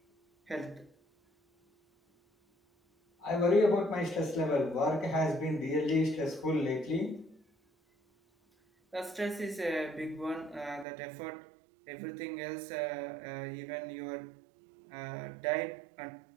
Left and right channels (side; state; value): left; drops out; at 10.9 s